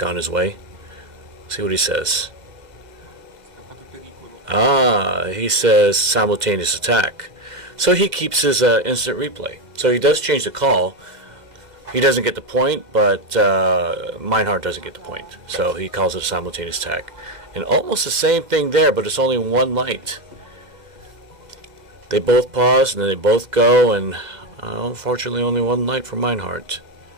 his way. See what he says. He says simultaneous attack. So he keeps his instant replay. So he does change the call. He doesn't get the point, but Meinhardt doesn't get the point. So he calls it a simultaneous attack. And almost the same thing there, but it's only one light. They both pause, and then they both go, and unfortunately only one light for Meinhardt.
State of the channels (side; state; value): left; late; 2.0 ms